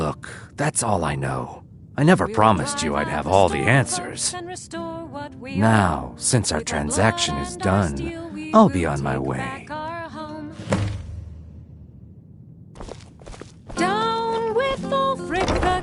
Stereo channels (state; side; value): identical; both; correlation 1.00